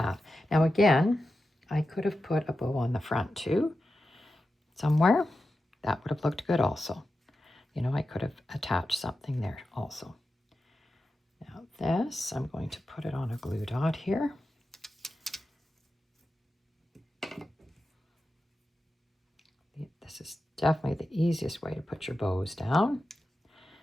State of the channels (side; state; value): both; normal; correlation 0.91